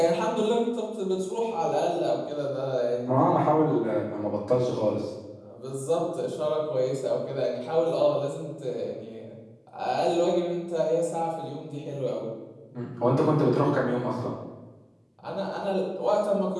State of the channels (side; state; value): both; identical; correlation 1.00